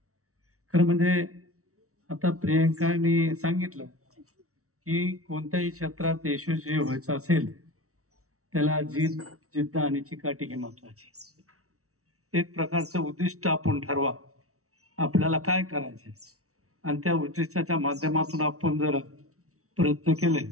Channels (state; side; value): late; left; 0.64 ms